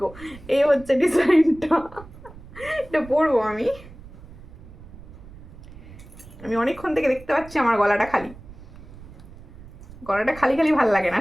এই হচ্ছে ডিজাইনটা, এটা পরবো আমি। আমি অনেকক্ষণ থেকে দেখতে পাচ্ছি আমার গলাটা খালি। গলাটা খালি খালি ভালো লাগে না,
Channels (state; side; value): noise; right; rumble, 18 dB below the sound